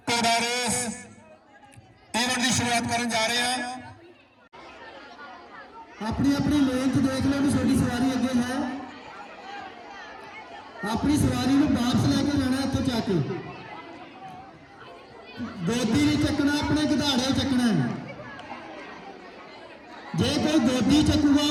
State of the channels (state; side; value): identical; both; correlation 1.00